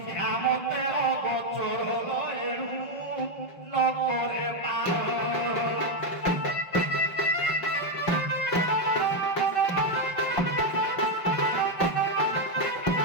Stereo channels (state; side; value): late; right; 5.6 ms